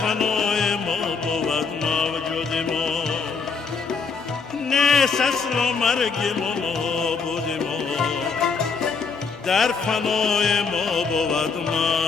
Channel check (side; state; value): right; quieter; 5.2 dB